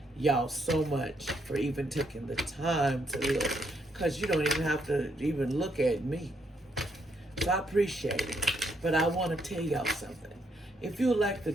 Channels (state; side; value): normal; both; correlation 0.75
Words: y'all so much for even taking the time to look, because you don't even have to even look at me. So I appreciate it. But I want to tell y'all something. If you would like to